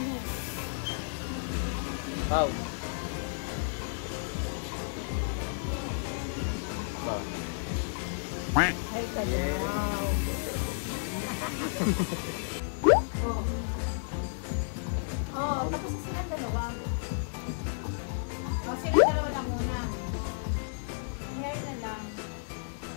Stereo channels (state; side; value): silent; right; digital silence